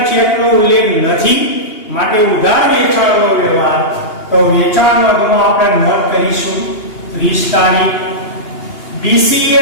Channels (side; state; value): right; late; 2.8 ms